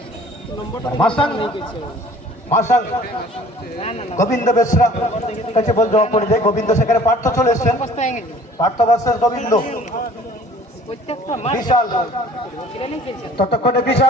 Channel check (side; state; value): both; normal; correlation 0.50